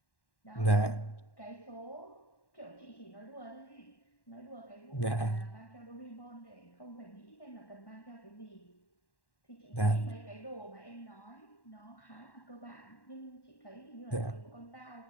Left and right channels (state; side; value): late; right; 1.1 ms